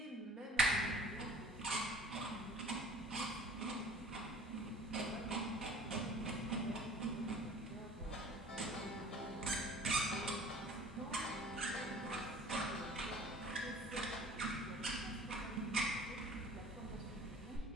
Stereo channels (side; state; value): both; normal; correlation 0.48